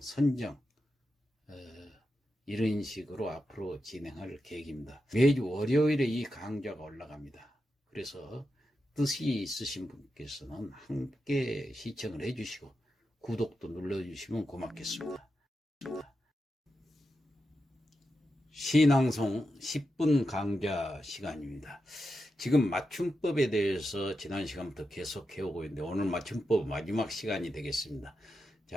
선정. 이런 식으로 앞으로 진행할 계획입니다. 매주 월요일에 이 강좌가 올라갑니다. 그래서 뜻이 있으신 분께서는 함께 시청을 해주시고 구독도 눌러주시면 고맙겠습니다. 시낭송 10분 강좌 시간입니다. 지금 맞춤법에 대해서 지난 시간부터 계속 해오고 있는데 오늘 맞춤법 마지막 시간이 되겠습니다.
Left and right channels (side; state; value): both; normal; correlation 0.88